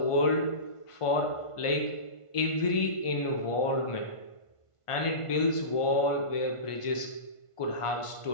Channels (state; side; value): late; right; 1.5 ms